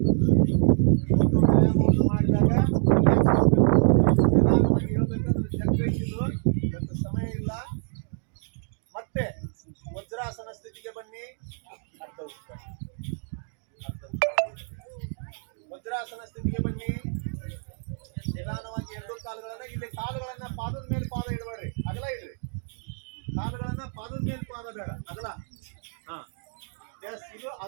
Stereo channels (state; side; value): silent; left; 60 dB below the other